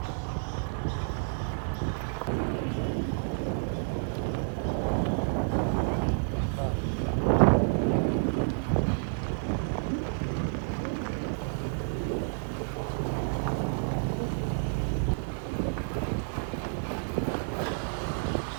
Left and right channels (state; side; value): silent; left; 58 dB below the other